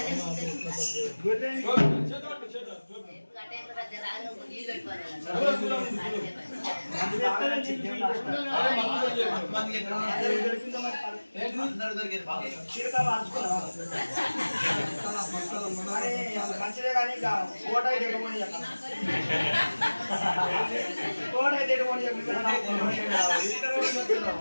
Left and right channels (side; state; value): both; inverted; correlation -1.00